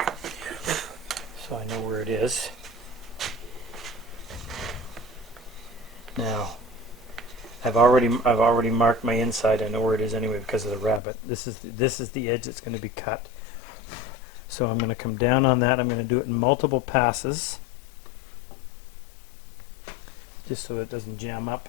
I know where it is. Now, I've already marked my inside. I know where it is anyway because of the rabbet. This is the edge that's going to be cut. So I'm going to come down on that. I'm going to do it in multiple passes, just so it doesn't jam up.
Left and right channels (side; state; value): right; drops out; at 11.0 s